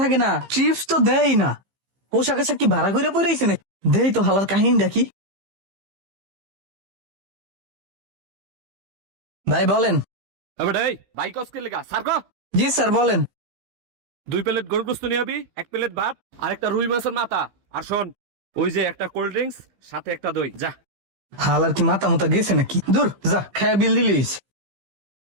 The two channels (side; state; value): left; late; 15 ms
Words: থাকে না, চিপস তো দেয় না, পোশাক আশাক কি ভাড়া করে পড়েছে না? দেই তো হালার কাহিনীটা কি। ভাই বলেন। এবারে এই বাইক অস্কে লেগা সারগো। জি স্যার বলেন। 2 প্লেট গরুর গোশত নিয়ে আবি, 1 প্লেট ভাত আর একটা রুই মাছের মাথা। আর শোন, ওই যে একটা কোল্ড ড্রিঙ্কস সাথে একটা দই, যা। হালার কি মাথা মুতা গেছে নাকি? দূর যা, খায়া বিল দিলিস।